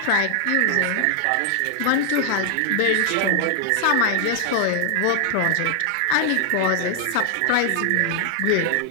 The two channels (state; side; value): different; both; correlation 0.00